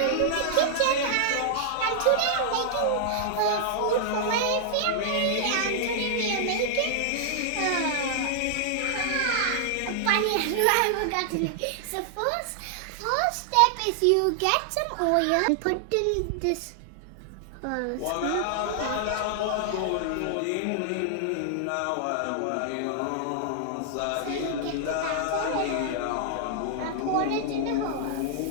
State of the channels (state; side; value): different; both; correlation -0.01